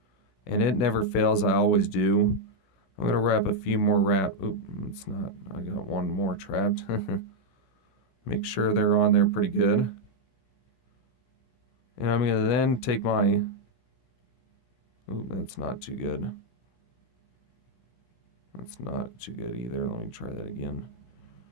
and it never fails, I always do, I'm going to wrap a few more Oop, it's not. I got one more trapped. Make sure they're on there pretty good. And I'm going to then take Oop, that's not too good. That's not too good either. Let me try that again.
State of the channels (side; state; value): right; late; 16 ms